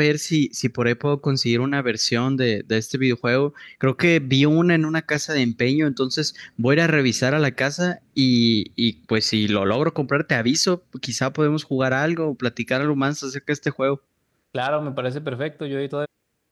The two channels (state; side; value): identical; both; correlation 1.00